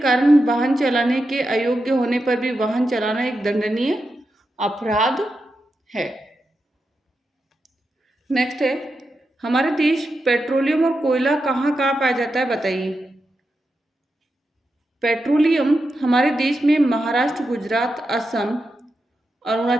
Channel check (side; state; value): both; normal; correlation 0.88